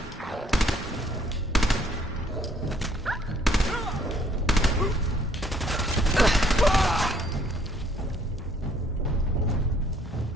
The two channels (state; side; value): normal; both; correlation 0.63